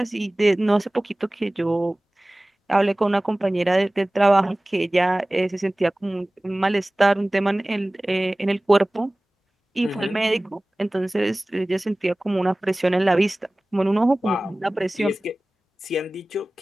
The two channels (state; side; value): normal; both; correlation 0.98